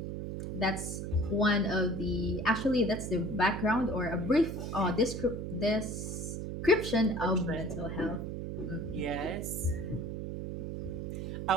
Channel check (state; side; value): noise; right; hum, 5 dB below the sound